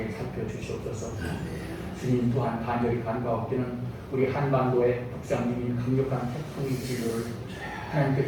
살펴주시옵소서. 주님 또한 간절히 간과하옵기는 우리 한반도에 북상 중인 강력한 태풍의 진로를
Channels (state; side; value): identical; both; correlation 1.00